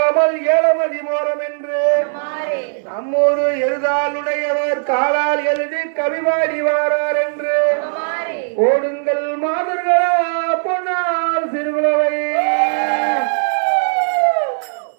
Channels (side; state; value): left; silent; digital silence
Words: ஏழமதி மோரம் என்று நம்மோடு எழுதாளுடையவர் காலால் எழுதி கவிவாடி வாரார் என்று ஓடுங்கள் மாதர்களா பொன்னால் சிறுகுலவை